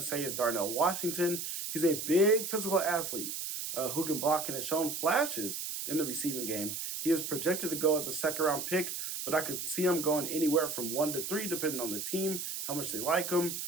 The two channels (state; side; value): noise; right; hiss, 5 dB below the sound